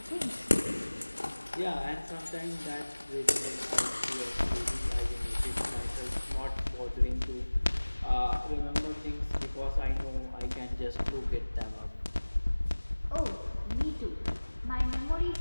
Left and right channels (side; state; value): both; inverted; correlation -1.00